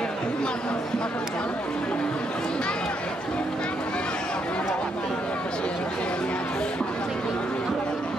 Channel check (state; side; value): normal; both; correlation 0.76